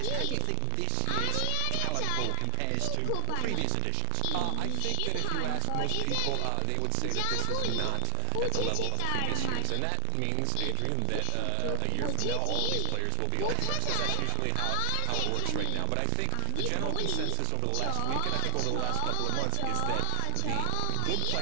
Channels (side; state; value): both; different; correlation 0.00